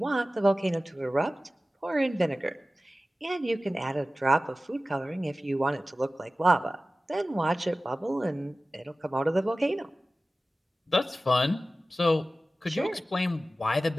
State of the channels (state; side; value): normal; both; correlation 0.96